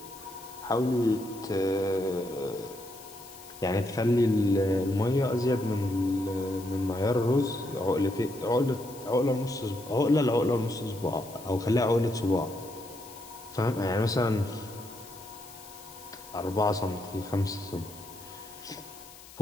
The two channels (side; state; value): left; noise; hiss, 19 dB below the sound